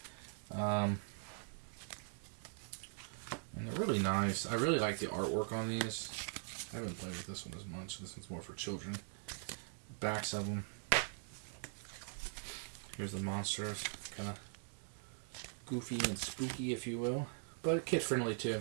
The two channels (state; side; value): silent; left; digital silence